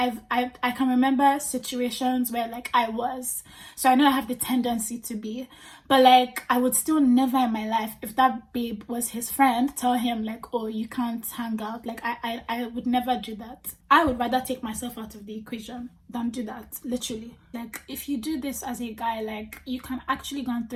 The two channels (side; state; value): both; identical; correlation 1.00